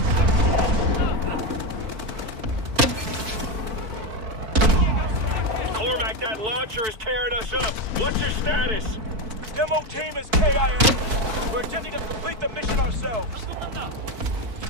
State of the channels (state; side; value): late; left; 4.6 ms